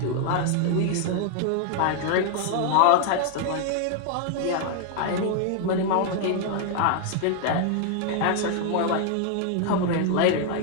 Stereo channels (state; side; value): different; both; correlation 0.00